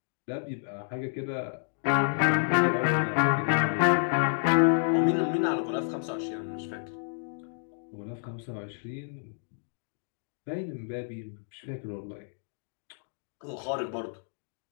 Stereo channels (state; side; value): silent; right; digital silence